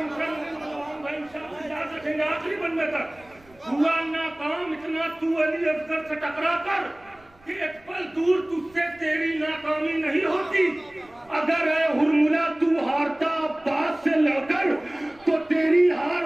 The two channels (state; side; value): noise; right; rumble, 29 dB below the sound